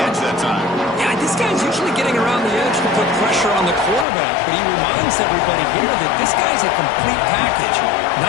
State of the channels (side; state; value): right; drops out; at 4.0 s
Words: that time. Yeah, this guy's usually getting around the edge to put pressure on the quarterback, but he reminds everybody here that this guy's a complete package.